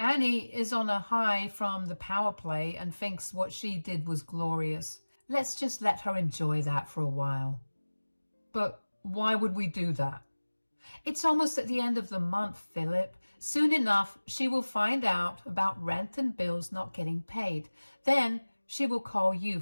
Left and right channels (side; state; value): both; inverted; correlation -1.00